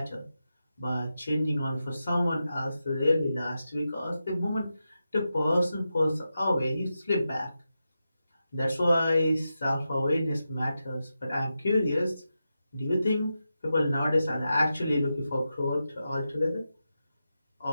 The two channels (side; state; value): both; inverted; correlation -0.90